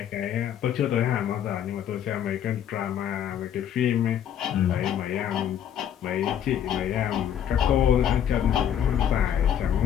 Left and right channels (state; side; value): quieter; right; 9.7 dB